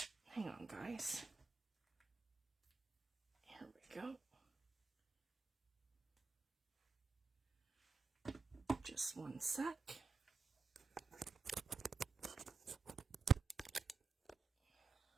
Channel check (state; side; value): quieter; left; 4.6 dB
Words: Hang on, guys. Here we go. Just one sec.